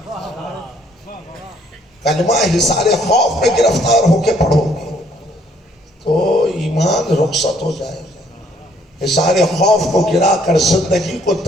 کلمہ حصار خوف میں گرفتار ہو کے پڑھو گے تو ایمان رخصت ہو جائے گا۔ حصار خوف کو گرا کر زندگی کو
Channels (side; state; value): both; normal; correlation 0.65